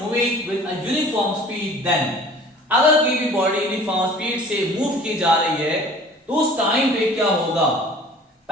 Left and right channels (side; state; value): both; normal; correlation 0.47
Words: with a uniform speed then, अगर कोई भी बॉडी यूनिफॉर्म स्पीड से मूव की जा रही है तो उस टाइम पे क्या होगा।